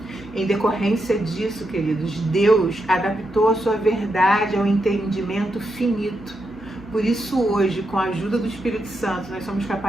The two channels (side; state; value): both; normal; correlation 0.84